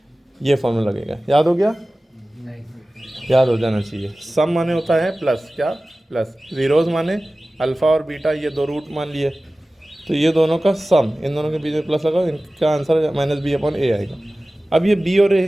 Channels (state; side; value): normal; both; correlation 0.97